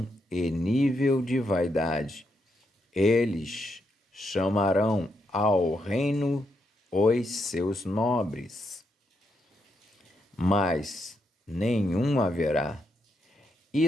e nível de vaidade. Eles chamarão ao reino os seus nobres, mas nenhum haverá,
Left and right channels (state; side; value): normal; both; correlation 0.80